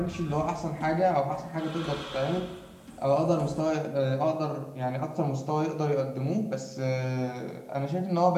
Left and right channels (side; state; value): both; identical; correlation 1.00